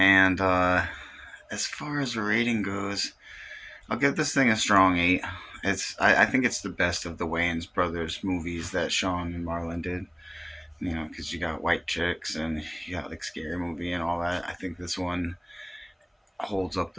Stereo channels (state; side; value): identical; both; correlation 1.00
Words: as far as the rating goes, I'll give this thing a strong 8. I think it's the best of the Wayans brothers movies that Sean and Marlon did. You know, because you got White Chicks and you got like Scary Movie and all that. I think this one holds up